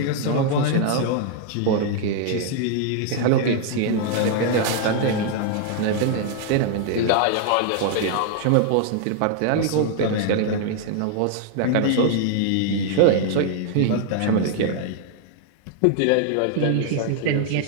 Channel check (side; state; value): both; different; correlation 0.00